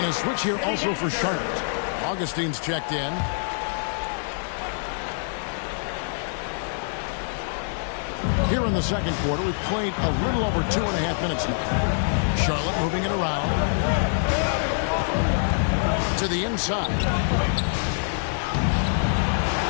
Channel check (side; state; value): right; silent; 62 dB below the other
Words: a switch here also for Charlotte. Augustine's checked in. Here in the second quarter, we've played a little over 2.5 minutes now. Charlotte moving it around. To the inside.